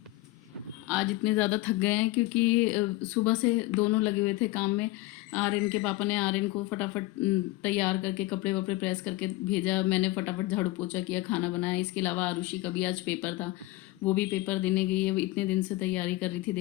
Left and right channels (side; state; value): right; quieter; 19.0 dB